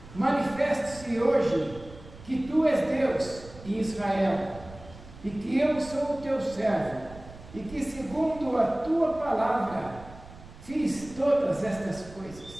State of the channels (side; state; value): right; noise; rumble, 18 dB below the sound